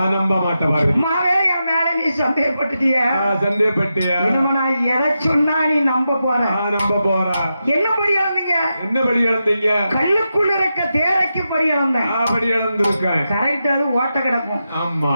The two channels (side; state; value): both; inverted; correlation -0.88